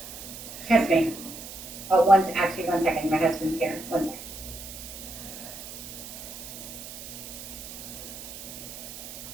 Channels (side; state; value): right; noise; hiss, 11 dB below the sound